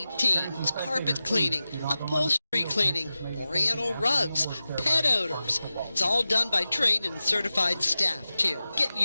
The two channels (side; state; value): both; inverted; correlation -0.94